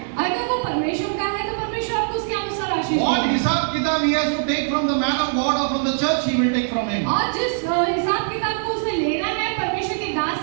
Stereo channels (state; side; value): silent; left; 64 dB below the other